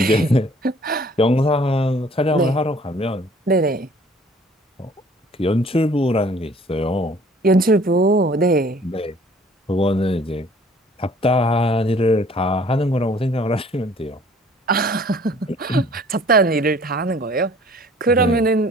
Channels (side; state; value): both; normal; correlation 0.54